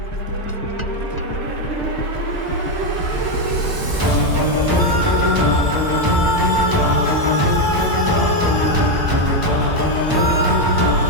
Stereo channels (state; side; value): late; left; 1.0 ms